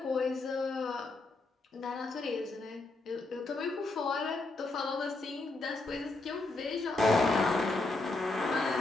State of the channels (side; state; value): right; quieter; 3.2 dB